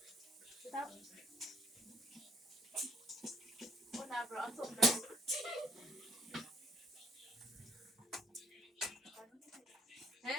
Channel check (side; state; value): both; normal; correlation 0.64